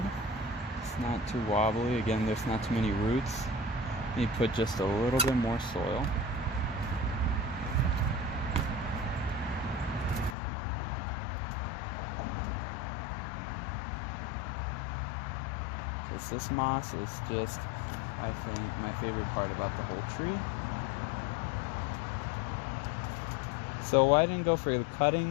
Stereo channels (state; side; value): drops out; right; at 10.4 s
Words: It's not too wobbly. Again, there's not too many roots. You put just a little bit more soil. This moss is just, I think, my favorite part about the whole tree. So why I didn't go for the